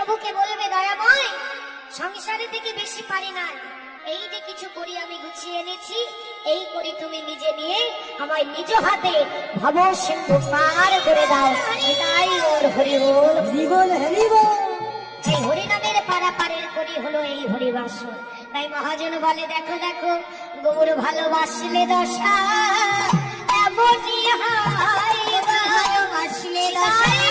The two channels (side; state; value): both; identical; correlation 1.00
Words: বলবে, দয়াময়, সংসারে থেকে বেশি পারি না, এই যে কিছু করি আমি গুছিয়ে এনেছি, এই করি তুমি নিজে নিয়ে আমায় নিজ হাতে ভব সিন্ধু পার করে দাও। এটাই ওর হরি বল, হরি বল, হরি বল। এই হরিনামের পারাপারের করি হলো এই হরিবাস। তাই মহাজন বলে, দেখো দেখো গৌর ভালোবাসলে দশা এমনই হয় গো, ভালোবাসলে দশা